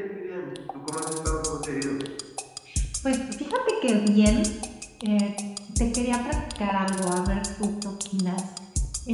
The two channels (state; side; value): identical; both; correlation 1.00